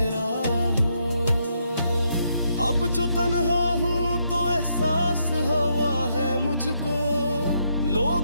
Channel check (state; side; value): inverted; both; correlation -0.77